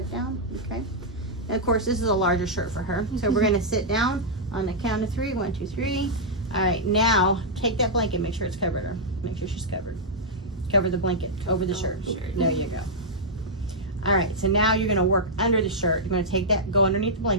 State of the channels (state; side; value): normal; both; correlation -0.07